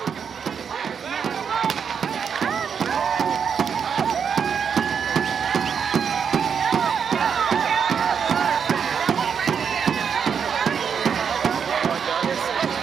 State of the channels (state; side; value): quieter; left; 6.9 dB